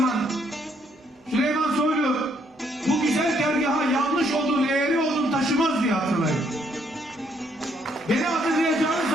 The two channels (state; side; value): normal; both; correlation 0.70